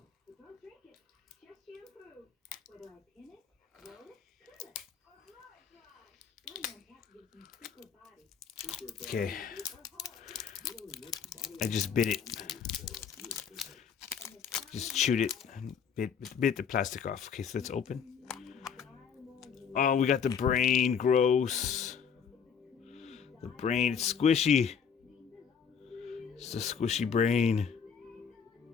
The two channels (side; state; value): right; quieter; 7.0 dB